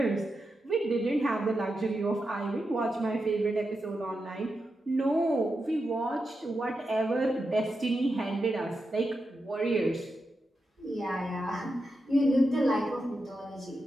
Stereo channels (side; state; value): both; normal; correlation 0.88